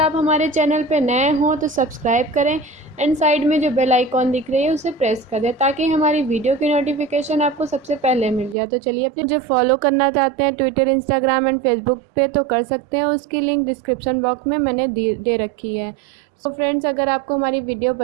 हमारे चैनल पे नए हों तो सब्सक्राइब करें एंड साइड में जो बेल आइकॉन दिख रही है उसे प्रेस कर दें, ताकि हमारी वीडियो की नोटिफिकेशन आपको सबसे पहले मिल जाए। तो चलिए, अपने जो फॉलो करना चाहते हैं ट्विटर, इंस्टाग्राम एंड फेसबुक पे तो कर सकते हैं। उसकी लिंक डिस्क्रिप्शन बॉक्स में मैंने दे रखी है। तो फ्रेंड्स, अगर आपको हमारी वीडियो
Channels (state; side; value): drops out; left; at 8.6 s